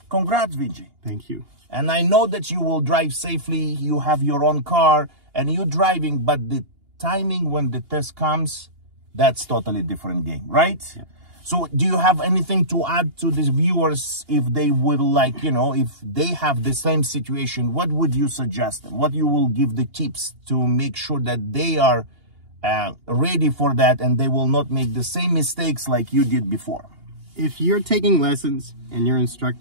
congrats, VJ. Thank you. And I know that you will drive safely. You have your own car and you're driving, but the timing when the test comes, that's totally different game, right? Yeah. So do you have anything to add to these viewers if they would if they have the same situation, what would you suggest them? What you will give the tips to make sure that they are ready for that and they will not make the same mistakes like you did before? If you're taking lessons and your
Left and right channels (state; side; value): late; left; 2.8 ms